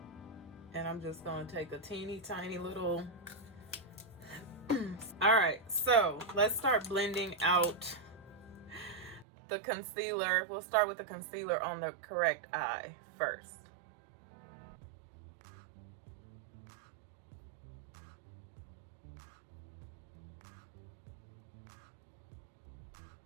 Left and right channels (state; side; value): drops out; left; at 9.2 s